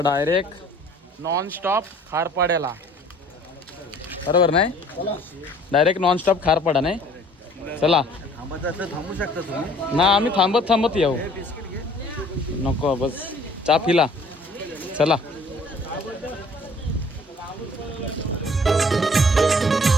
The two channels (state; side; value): normal; both; correlation 0.54